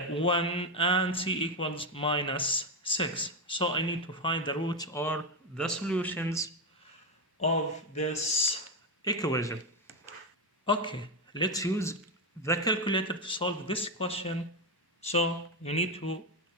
and c equals minus 6. So I need to find the roots or the solutions of this equation. Okay, let's use the calculator to solve this question. So you need to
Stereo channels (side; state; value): both; normal; correlation 0.09